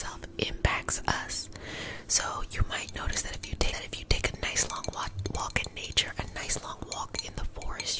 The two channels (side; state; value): both; identical; correlation 1.00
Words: impacts us. So you might notice that if you take a nice long walk in nature, a nice long walk in the